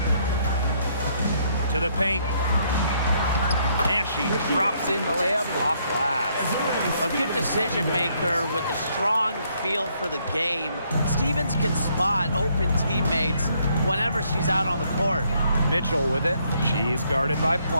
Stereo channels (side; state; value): both; inverted; correlation -0.70